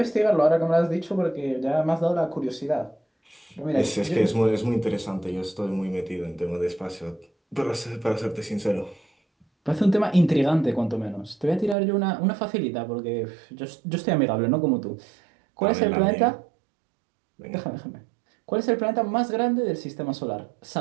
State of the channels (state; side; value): drops out; left; at 11.8 s